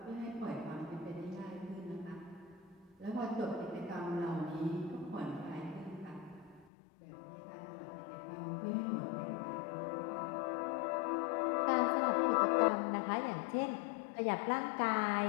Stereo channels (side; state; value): right; drops out; at 6.7 s